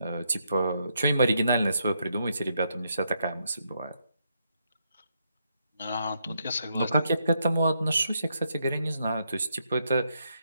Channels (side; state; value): both; inverted; correlation -0.78